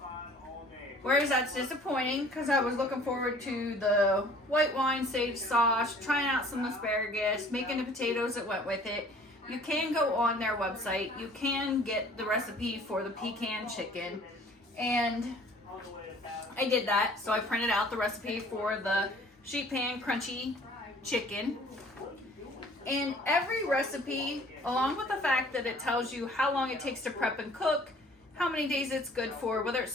whereas that's disappointing because I was looking forward to the white wine sage sauce, trying out some asparagus, making the potatoes that went with it. You can go on their website. You can get the recipe for the pecan chicken, and I did that. So I printed out the recipe for the sheet pan crunchy chicken. And every recipe, along with the fact that it tells you how long it takes to prep and cook, how many days it's good for, whether it's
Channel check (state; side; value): normal; both; correlation 0.52